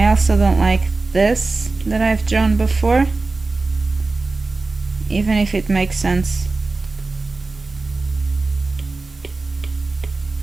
also don't like this that I've drawn before, even if it makes sense.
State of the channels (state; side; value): quieter; left; 3.5 dB